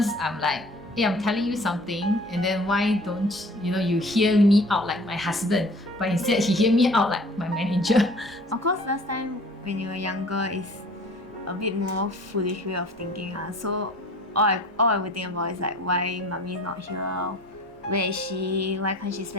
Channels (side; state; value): both; normal; correlation 0.47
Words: I'm like, hey, I'm telling you something, and then why don't you hear me out like my husband, but instead he hear me out like my manager. Of course, last time when you were younger is a bit more foolish way of thinking. So all I would think about is why mommy is not here, where is she, why can't she